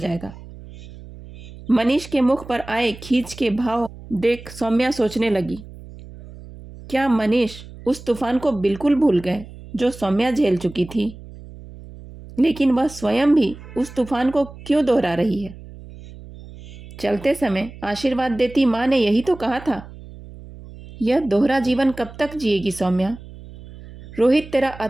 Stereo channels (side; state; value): right; noise; hum, 17 dB below the sound